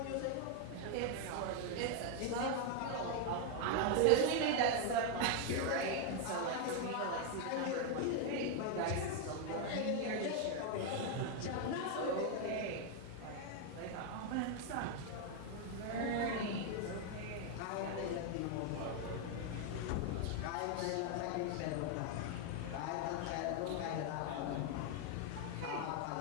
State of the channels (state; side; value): different; both; correlation 0.01